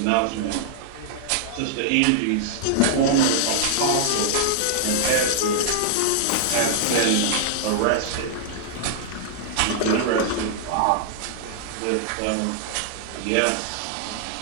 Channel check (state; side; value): different; both; correlation -0.01